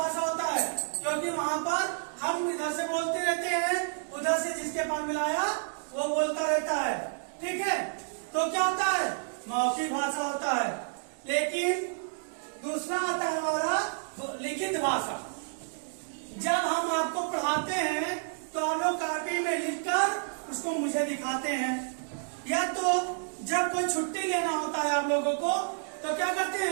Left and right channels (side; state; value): left; silent; digital silence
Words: होता है, क्योंकि वहाँ पर हम इधर से बोलते रहते हैं, उधर से जिसके पास मिलाया वो बोलता रहता है। ठीक है, तो क्या होता है? मौखिक भाषा होता है। लेकिन दूसरा आता है हमारा लिखित भाषा। जब हम आपको पढ़ाते हैं तो आप लोग कॉपी में लिखकर उसको मुझे दिखाते हैं, या तो जब कोई छुट्टी लेना होता है आप लोगों को तो क्या करते